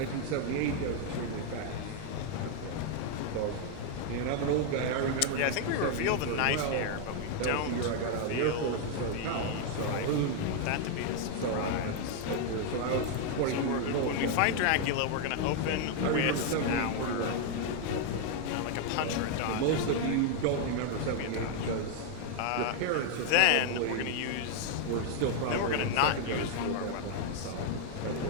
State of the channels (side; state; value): both; different; correlation 0.00